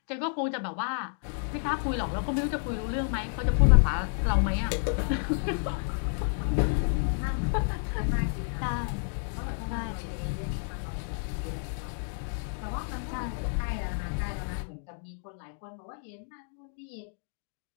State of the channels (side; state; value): right; silent; digital silence